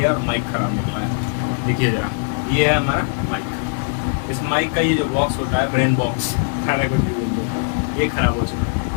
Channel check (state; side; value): silent; right; 59 dB below the other